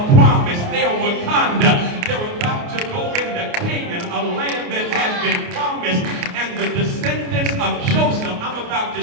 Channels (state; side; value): late; left; 29 ms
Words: promise. They're Wakanda. They're about to go into Canaan, a land that has been promised. And the descendants of Joseph, I'm about to